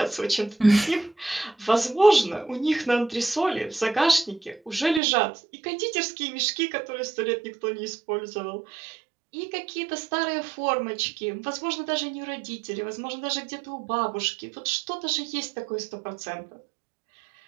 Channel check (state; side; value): drops out; left; at 5.0 s